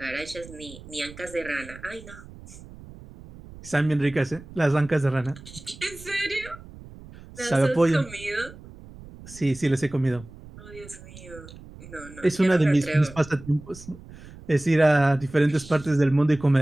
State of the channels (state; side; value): noise; right; rumble, 18 dB below the sound